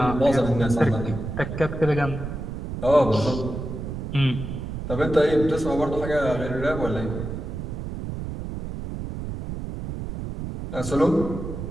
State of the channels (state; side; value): noise; right; rumble, 6 dB below the sound